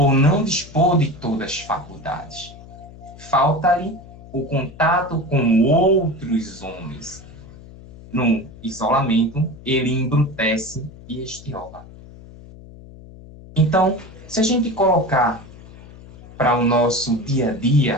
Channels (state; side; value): noise; left; hum, 19 dB below the sound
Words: não dispor de todas as faculdades. Falta-lhe o contato com outros homens. No isolamento, ele embrutece e estiola. Então, se a gente colocar para o nosso dia a